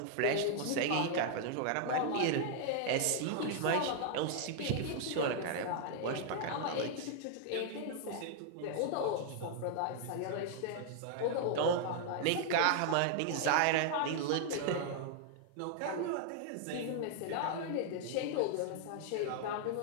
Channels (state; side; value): different; both; correlation -0.01